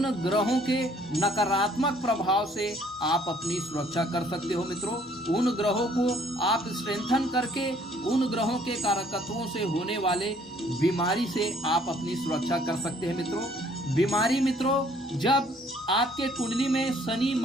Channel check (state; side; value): normal; both; correlation 0.61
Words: ग्रहों के नकारात्मक प्रभाव से आप अपनी सुरक्षा कर सकते हो मित्रों। उन ग्रहों को आप स्ट्रेंथन करके उन ग्रहों के कारकत्वों से होने वाले बीमारी से आप अपनी सुरक्षा कर सकते हैं मित्रों। बीमारी मित्रों, जब आपके कुंडली में शनि